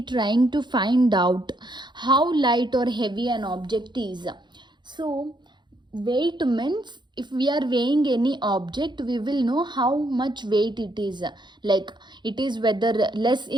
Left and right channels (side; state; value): left; late; 0.22 ms